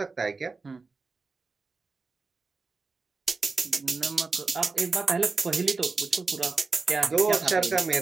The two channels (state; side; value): quieter; left; 4.1 dB